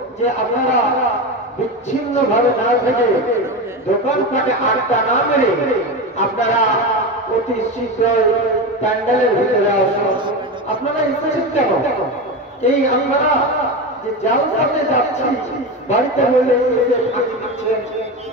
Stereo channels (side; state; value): both; normal; correlation 0.20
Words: যে আপনারা বিচ্ছিন্ন ভাবে না থেকে, দোকানপাটে আড্ডা না মেরে আপনারা অতি শীঘ্রই প্যান্ডেলের ভিতরে আসুন। আপনারা এসেছেন কেন? এই আপনারা যে জালসাতে যাচ্ছি, বাড়িতে হইলে ফাঁকি দিচ্ছেন,